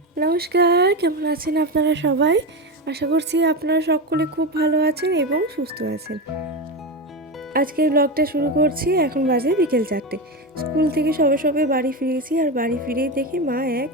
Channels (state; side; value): normal; both; correlation 0.16